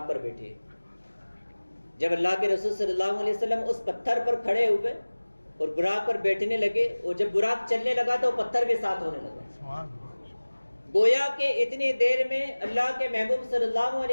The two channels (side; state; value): both; inverted; correlation -1.00